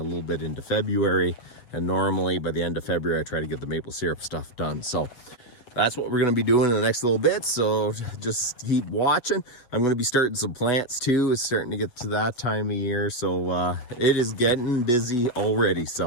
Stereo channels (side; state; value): right; late; 7.9 ms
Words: little bit into February. And normally by the end of February, I try to get the maple syrup stuff done. So that's what we're going to be doing in the next little bit. So just keep watching. I'm going to be starting some plants too. It's starting to get to that time of year. So it is getting busy already.